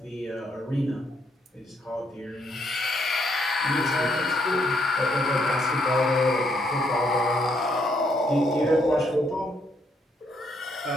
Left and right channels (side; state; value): both; normal; correlation 0.72